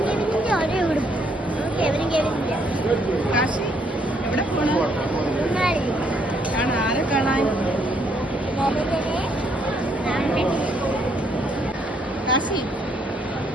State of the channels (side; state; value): both; normal; correlation 0.70